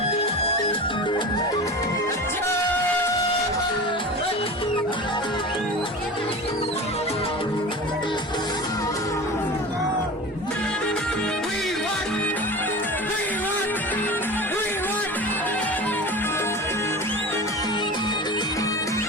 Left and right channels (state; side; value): normal; both; correlation 0.33